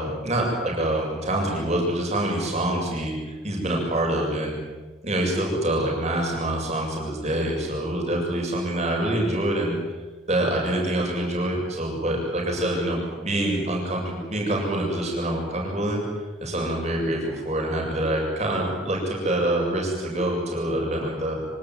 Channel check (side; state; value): both; normal; correlation 0.48